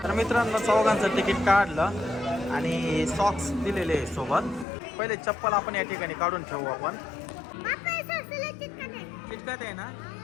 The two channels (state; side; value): drops out; right; at 4.7 s